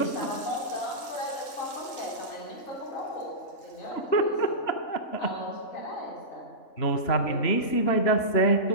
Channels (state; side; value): late; right; 3.5 ms